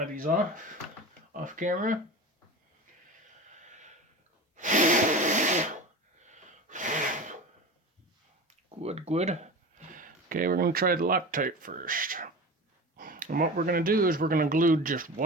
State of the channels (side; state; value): both; normal; correlation 0.31